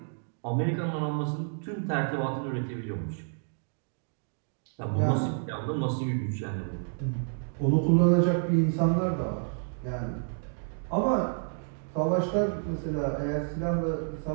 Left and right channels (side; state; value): left; silent; 58 dB below the other